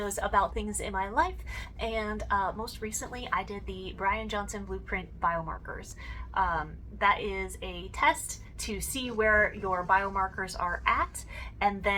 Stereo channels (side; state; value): both; identical; correlation 1.00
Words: about things in my life, and most recently I did the Brian Johnson Blueprint Biomarkers. That is a test to see where your biomarkers are at, and